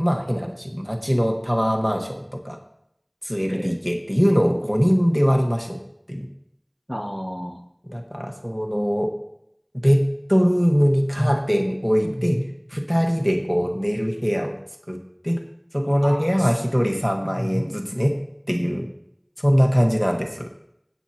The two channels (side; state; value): both; identical; correlation 1.00